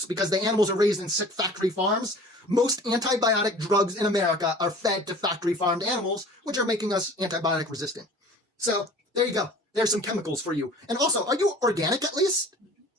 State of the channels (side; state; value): both; normal; correlation 0.45